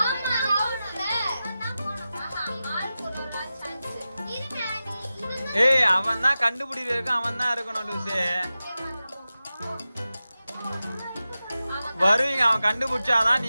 ஏய், அவன் தான் கண்டுபிடிக்கிறதுக்கு அவன் தான் இருக்கணும் லூசு. வருவீங்க, அவன் கண்டுபிடிச்சாதான்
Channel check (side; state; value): both; inverted; correlation -0.94